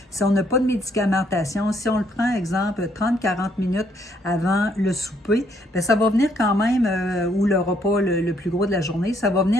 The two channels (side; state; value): both; normal; correlation 0.69